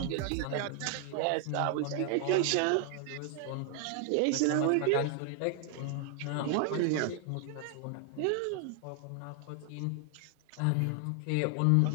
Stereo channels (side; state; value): both; different; correlation 0.00